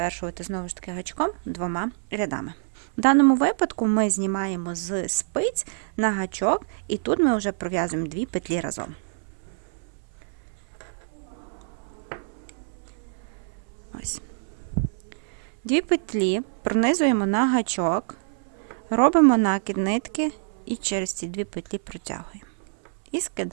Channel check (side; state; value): left; silent; 61 dB below the other